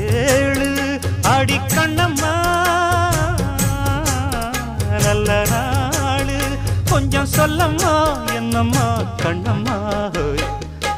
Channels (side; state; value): both; identical; correlation 1.00